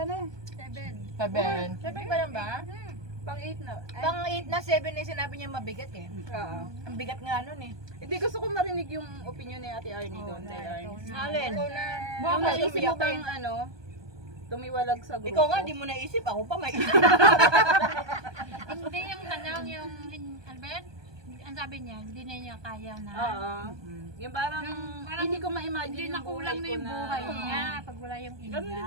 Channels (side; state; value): left; late; 1.2 ms